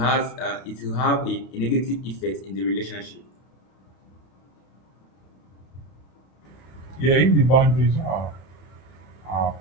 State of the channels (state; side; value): late; right; 32 ms